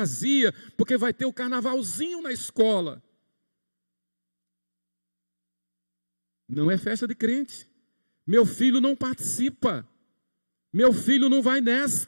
Porque vai ter o carnavalzinho na escola. Não é festa de crente. Meu filho não participa. Meu filho não vai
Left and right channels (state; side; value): inverted; both; correlation -1.00